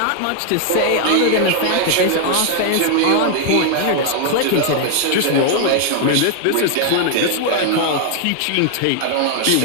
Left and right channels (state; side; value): different; both; correlation 0.00